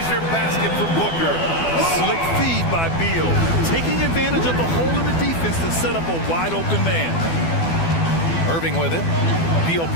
basket for Booker. Slick feed by Beal, taking advantage of the hole in the defense to set up a wide-open man. Irving with it. Beal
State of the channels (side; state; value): right; late; 12 ms